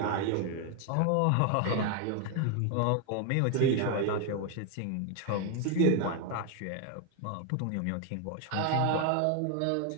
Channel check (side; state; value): both; different; correlation 0.01